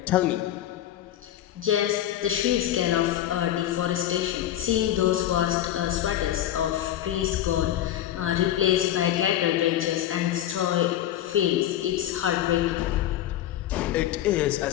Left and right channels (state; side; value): quieter; right; 12.2 dB